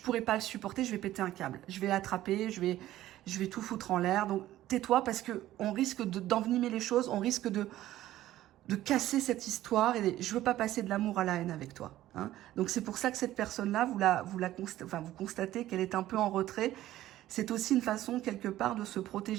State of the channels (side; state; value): left; quieter; 14.3 dB